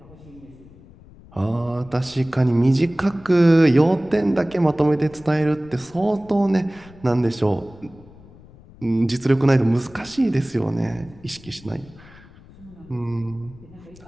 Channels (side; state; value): left; noise; rumble, 22 dB below the sound